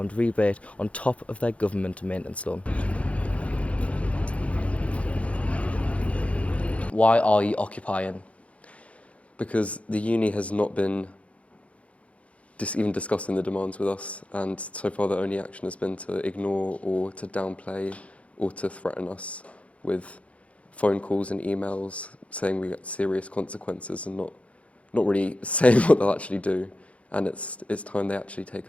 rebate on top of their government maintenance loan. Why are you occupying? Because the uni has not been even discussing the demands with us, and so far the only action has been to ignore or to downplay or to threaten us with phone calls and emails saying we get serious consequences and not really saying what they'll actually do, and it's time they actually take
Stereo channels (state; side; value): late; right; 0.064 ms